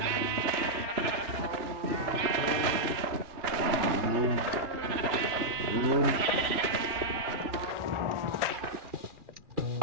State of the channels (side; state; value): left; late; 3.0 ms